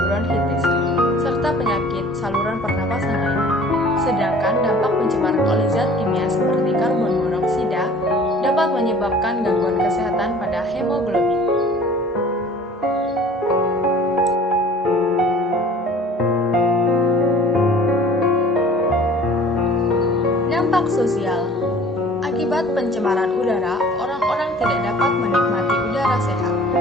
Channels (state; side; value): normal; both; correlation 0.48